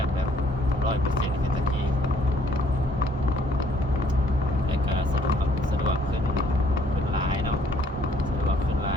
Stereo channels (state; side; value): normal; both; correlation 0.64